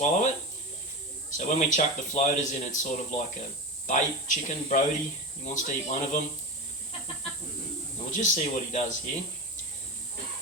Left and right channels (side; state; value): both; normal; correlation 0.22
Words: it. So when we chuck the floaters in, it's sort of like a bait chicken, Brody. He wants to eat one of them. We'll just see what he does here.